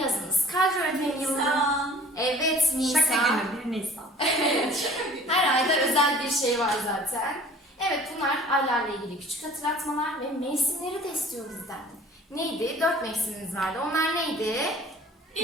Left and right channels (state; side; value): normal; both; correlation 0.49